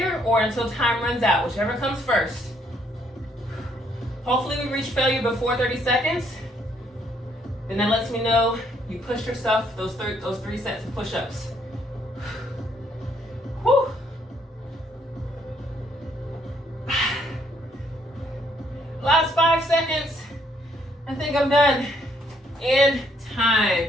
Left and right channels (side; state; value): both; normal; correlation 0.69